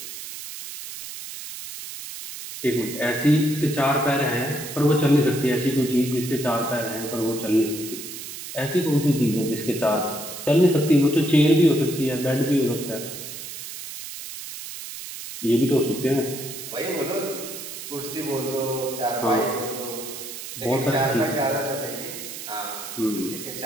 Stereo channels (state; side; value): noise; right; hiss, 10 dB below the sound